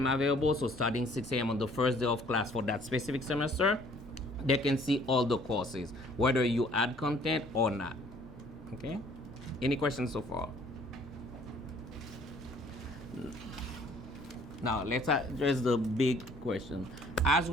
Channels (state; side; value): normal; both; correlation 0.58